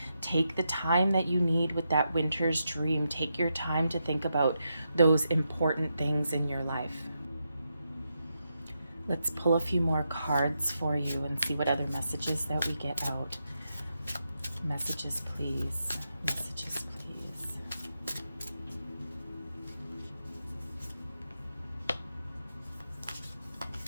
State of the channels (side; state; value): both; inverted; correlation -0.85